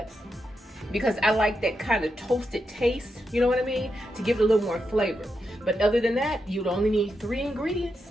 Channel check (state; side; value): normal; both; correlation 0.85